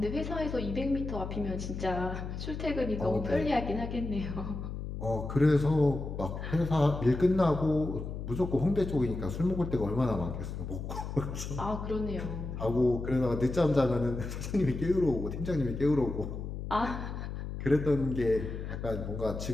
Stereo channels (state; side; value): noise; left; hum, 6 dB below the sound